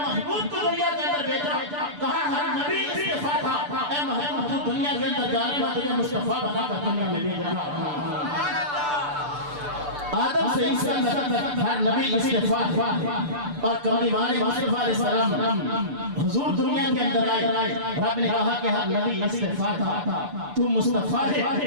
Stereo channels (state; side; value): late; left; 6.8 ms